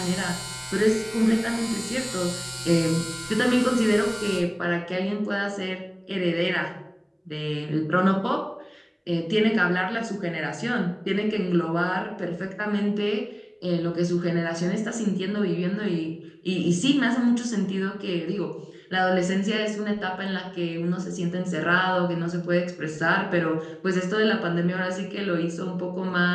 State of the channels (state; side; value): identical; both; correlation 1.00